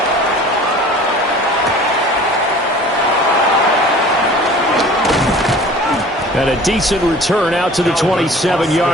a decent return out to the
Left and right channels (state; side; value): normal; both; correlation 0.45